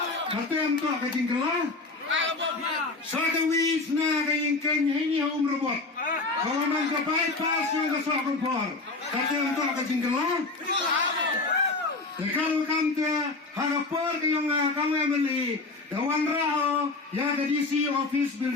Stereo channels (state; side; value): quieter; right; 3.5 dB